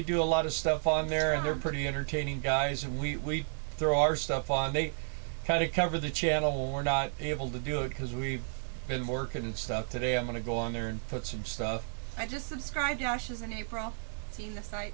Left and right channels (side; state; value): left; silent; digital silence